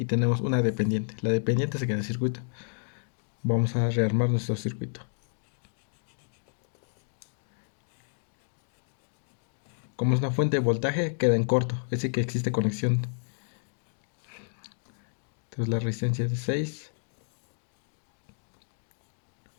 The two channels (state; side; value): silent; right; digital silence